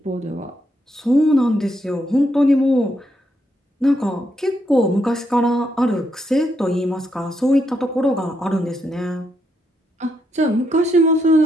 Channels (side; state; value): both; normal; correlation 0.79